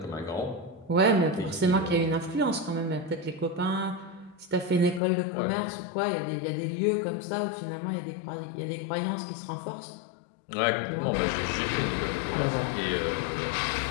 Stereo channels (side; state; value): right; drops out; at 5.0 s